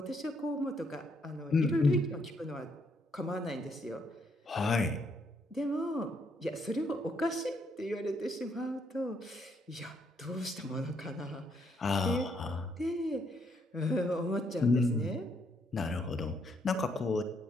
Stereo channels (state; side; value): normal; both; correlation 0.73